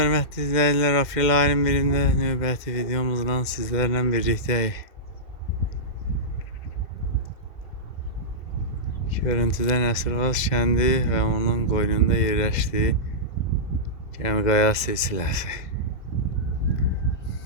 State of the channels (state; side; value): late; right; 2.1 ms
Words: izləyicilər, aprel ayının birində növbəti videomuzla sizlərlə birlikdəyik. Görüntüdə Nəsirvaz kəndi və onun qoynunda yerləşdiyi Gəmiqaya silsiləsi.